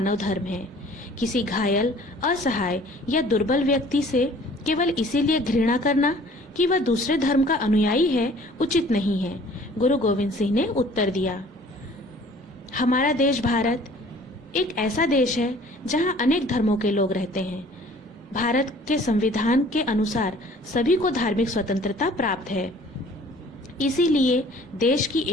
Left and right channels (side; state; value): both; normal; correlation 0.52